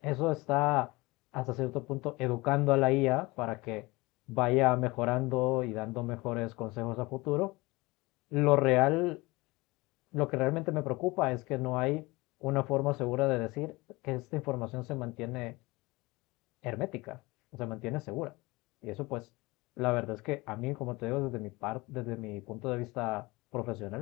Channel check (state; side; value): quieter; right; 22.8 dB